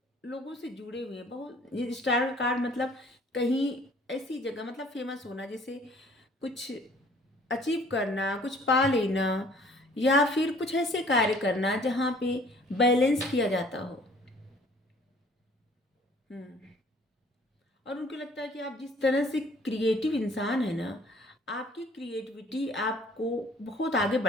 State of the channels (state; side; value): normal; both; correlation 0.55